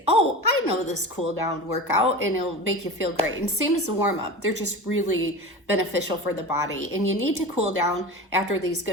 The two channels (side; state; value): both; normal; correlation 0.30